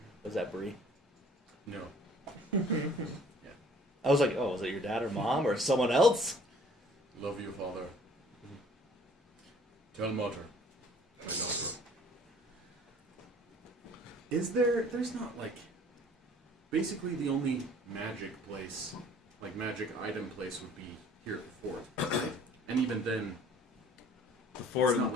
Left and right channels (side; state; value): both; normal; correlation 0.54